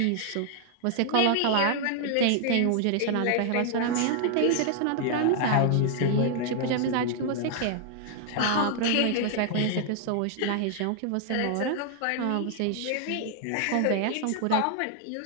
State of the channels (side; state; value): both; different; correlation 0.00